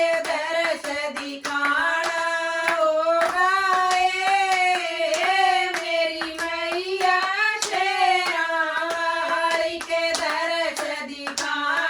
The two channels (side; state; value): both; identical; correlation 1.00